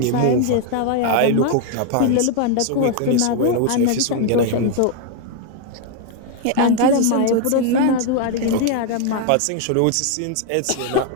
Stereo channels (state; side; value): different; both; correlation 0.00